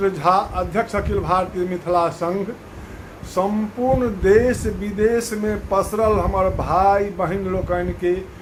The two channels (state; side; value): identical; both; correlation 1.00